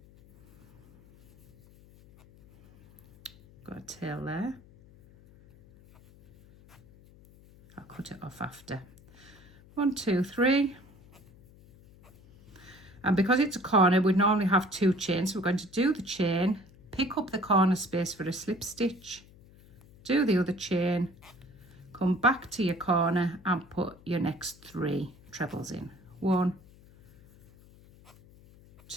got a tail there. I'll cut it off after. 1, 2, 3. And because it's a corner, we normally have 2 chains. So we're going to do the chain, pick up the corner space for a slip stitch, do the other chain, come back to your corner and put your next 3 trebles in. 1,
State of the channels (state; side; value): noise; left; hum, 24 dB below the sound